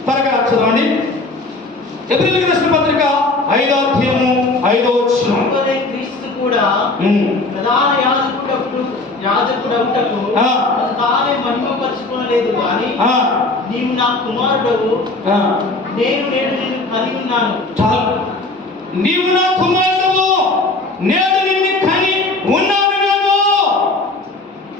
త్వరగా చదవండి. ఎబ్రిల్కి రాసిన పత్రిక 5వ అధ్యాయము 5వ వచనం. క్రీస్తు కూడా ప్రధాన యాజకుడవుటకు తానే మహిమపరుచుకోలేదు కానీ నీవు నా కుమారుడవు, నేను నిన్ను కని ఉన్నాను. చాలు, నీవు నా కుమారుడవు, నేను నిన్ను కని ఉన్నాను.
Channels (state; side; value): quieter; right; 3.1 dB